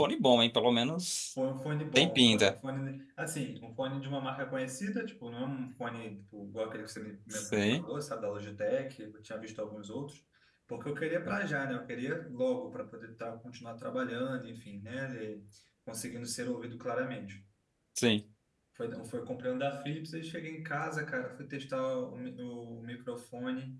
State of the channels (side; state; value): both; identical; correlation 1.00